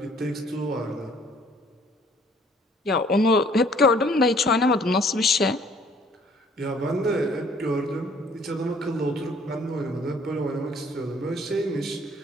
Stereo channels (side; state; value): both; normal; correlation 0.58